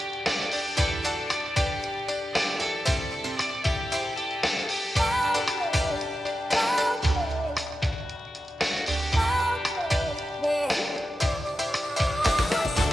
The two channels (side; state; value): both; normal; correlation 0.91